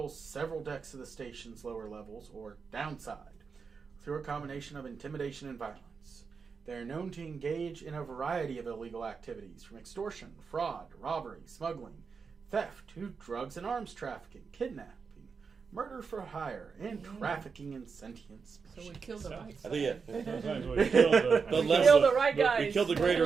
several decks of the station's lower levels, or downside, through a combination of intimidation and violence. They are known to engage in a variety of illegal activities, from extortion, fraud, robbery, smuggling, theft, to drugs and arms trafficking, kidnapping, murder for hire, and trafficking in sentient species. So we killed the right I side. think Sometimes we kill the, The We less killed of- the right guys. we killed the greater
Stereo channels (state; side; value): quieter; left; 5.4 dB